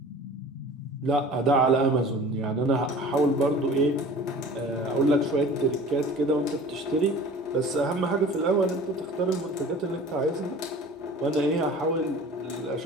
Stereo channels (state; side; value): normal; both; correlation 0.43